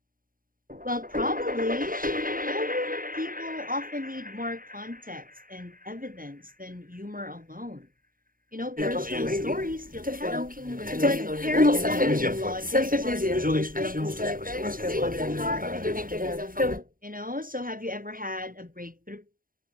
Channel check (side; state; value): left; late; 0.41 ms